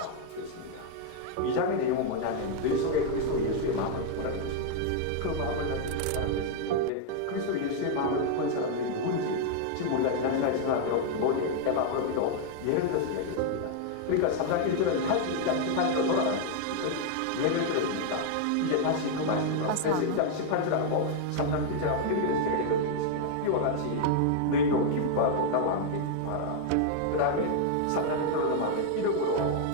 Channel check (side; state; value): both; different; correlation 0.00